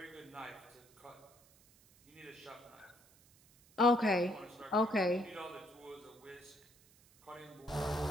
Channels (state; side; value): noise; right; hiss, 27 dB below the sound